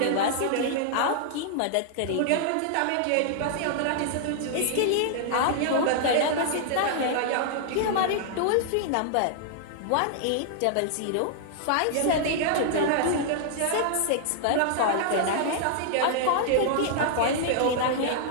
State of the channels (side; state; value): both; different; correlation -0.01